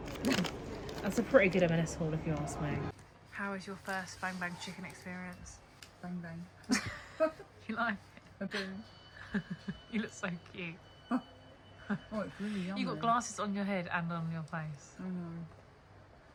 That's a pretty good M&S haul if you ask me. How was your first Bang Bang Chicken experience? Bang bang. You like I do. it? You look so cute. Oh, it's really yummy. You got glasses on your head and on your face. I know.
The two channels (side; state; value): both; identical; correlation 1.00